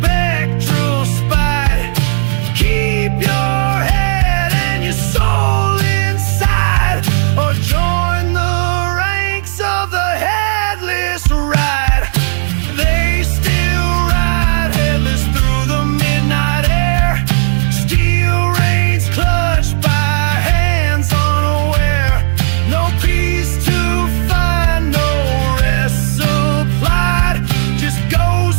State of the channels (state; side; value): silent; left; 68 dB below the other